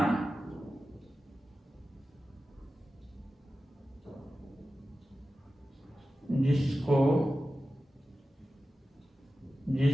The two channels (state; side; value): normal; both; correlation 0.93